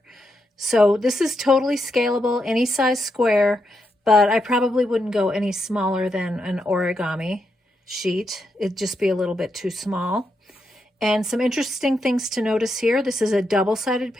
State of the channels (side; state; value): both; normal; correlation 0.82